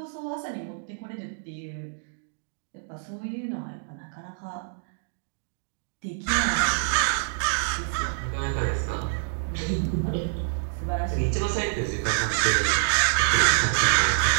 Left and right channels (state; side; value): silent; left; digital silence